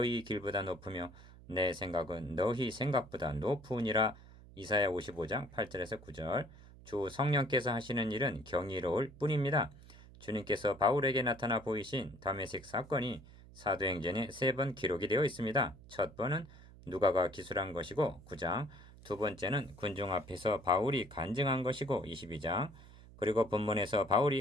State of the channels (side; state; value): right; noise; hum, 20 dB below the sound